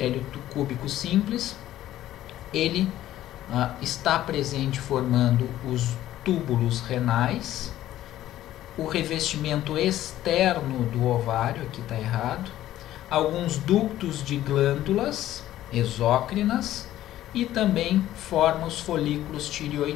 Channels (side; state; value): right; quieter; 13.5 dB